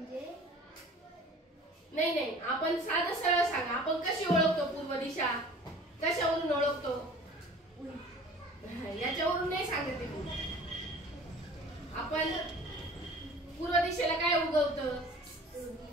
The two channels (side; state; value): both; normal; correlation 0.45